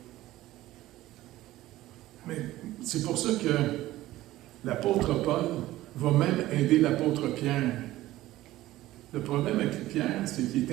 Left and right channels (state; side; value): quieter; left; 16.0 dB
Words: Mais c'est pour ça que l'apôtre Paul va même aider l'apôtre Pierre. Le problème avec Pierre, c'est qu'il